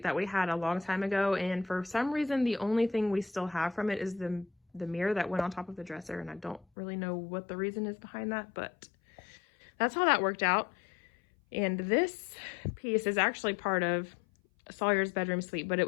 that we had a long time ago, and for some reason the only thing we still have from it is the mirror that went on top of the dresser, and I don't really know what the reason is behind that, but that's how that worked out. And this piece is actually part of Sawyer's bedroom suite, but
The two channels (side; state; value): right; drops out; at 6.7 s